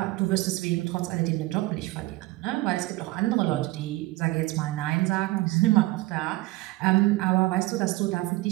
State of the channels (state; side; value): quieter; left; 19.6 dB